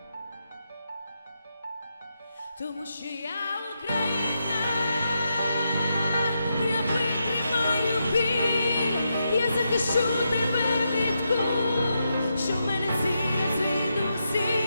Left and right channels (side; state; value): both; inverted; correlation -0.84